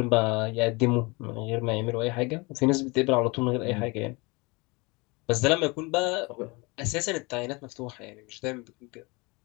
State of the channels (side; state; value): right; quieter; 26.7 dB